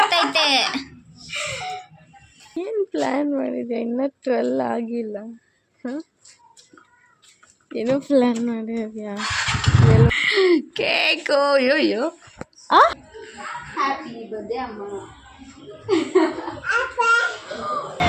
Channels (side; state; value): both; identical; correlation 1.00